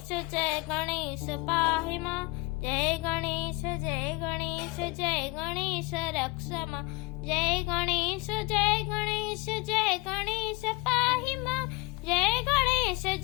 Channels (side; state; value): right; quieter; 23.5 dB